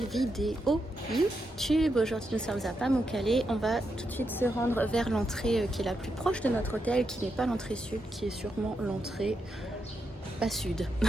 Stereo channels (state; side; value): normal; both; correlation 0.84